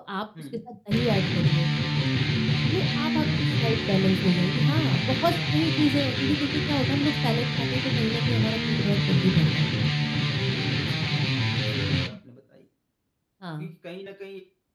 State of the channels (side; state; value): both; identical; correlation 1.00